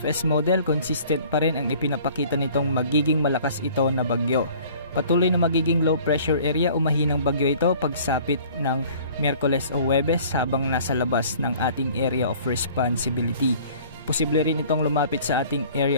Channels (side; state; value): both; inverted; correlation -0.51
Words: model, consistent pa rin ang ipinapakita nitong magiging malakas ito na bagyo. Patuloy na magiging low pressure area o mahinang bagyo ito pagsapit ng Miyerkules o Huwebes habang nasa labas ng ating area of responsibility. Posible rin itong lumapit sa ating